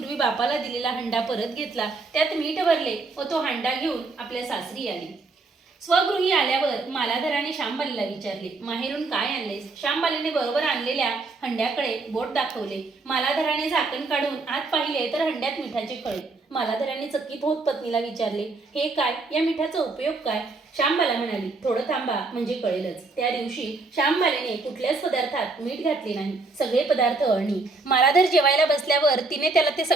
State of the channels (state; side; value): quieter; left; 3.6 dB